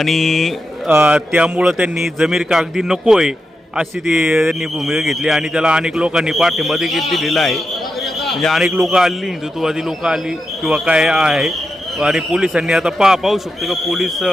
त्यामुळं त्यांनी जमीर कागदी नको आहे अशी त्यांनी भूमिका घेतली आणि त्याला अनेक लोकांनी पाठिंबा देखील दिलेला आहे. म्हणजे अनेक लोक आली, हिंदुत्ववादी लोक आली किंवा काय आहे. आणि पोलिसांनी आता पाहू शकतो की पोलीस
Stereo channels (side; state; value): both; normal; correlation 0.88